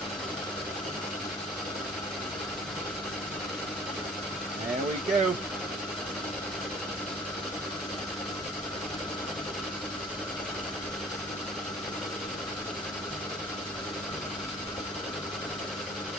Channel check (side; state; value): both; normal; correlation 0.52